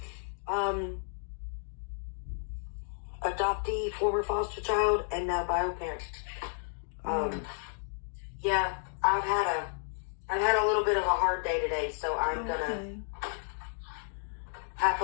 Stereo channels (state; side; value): silent; right; 56 dB below the other